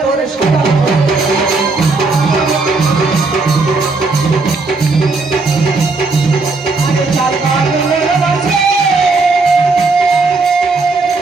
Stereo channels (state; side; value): quieter; left; 3.7 dB